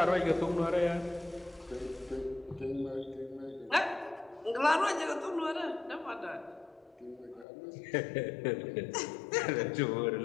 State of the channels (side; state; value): right; drops out; at 7.5 s